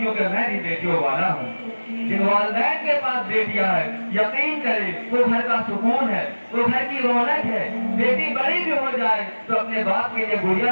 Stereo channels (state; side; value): inverted; both; correlation -1.00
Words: میں بھی بیٹیوں والا ہوں۔ جن والدین کے پاس بیٹیاں ہیں، یقین کرے وہ گھر کا سکون ہے، وہ گھر کی رونق ہے۔ بیٹی بڑی بھی ہو جائے تو اپنے باپ کے لیے